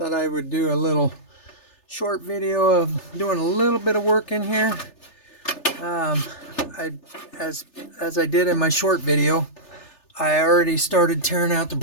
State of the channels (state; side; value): late; right; 3.3 ms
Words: I would do a little short video of doing a little bit of work in here. Um, I, as I did in my short video, I already started tearing out the